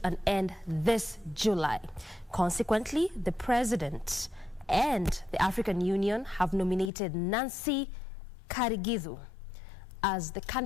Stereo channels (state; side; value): drops out; right; at 6.9 s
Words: an end this July. Consequently, the President and the African Union have nominated Nancy Karigithu as the